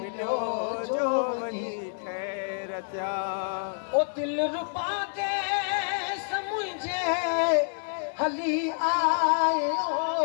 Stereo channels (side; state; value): right; silent; digital silence